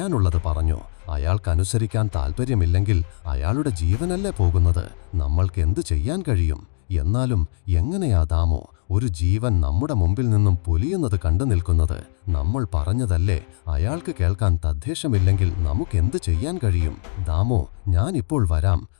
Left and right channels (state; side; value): silent; right; 65 dB below the other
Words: പറഞ്ഞു. അയാൾക്കനുസരിക്കാൻ താല്പര്യമില്ലെങ്കിൽ അയാളുടെ ജീവനല്ലേ പോകുന്നത്. നമ്മൾക്ക് എന്തു ചെയ്യാൻ കഴിയും? എന്നാലും എങ്ങനെയാ ദാമോ ഒരു ജീവൻ നമ്മുടെ മുമ്പിൽ നിന്നും പൊലിയുന്നത് കണ്ടു നിൽക്കുന്നത്? നമ്മൾ പറഞ്ഞതല്ലേ, അയാൾക്ക് കേൾക്കാൻ തദ്ദേശമില്ലെങ്കിൽ നമുക്കെന്ത് ചെയ്യാൻ കഴിയും? ദാമോ, ഞാനിപ്പോൾ വരാം.